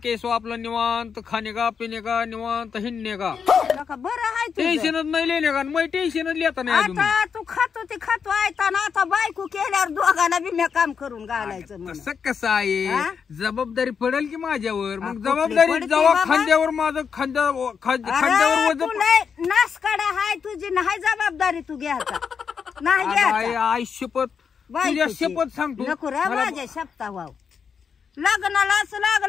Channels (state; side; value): quieter; right; 6.5 dB